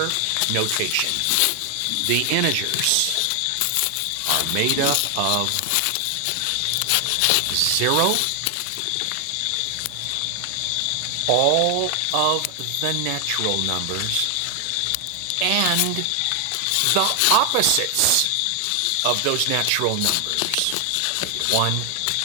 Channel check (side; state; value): both; different; correlation 0.00